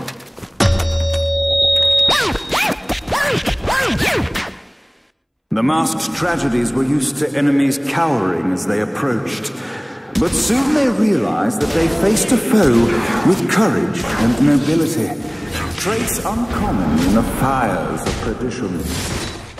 The masked tragedies were used to enemies cowering as they approached. But soon they realized that they faced a foe with courage and nobility, traits uncommon in the fires of perdition.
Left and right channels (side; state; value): both; identical; correlation 1.00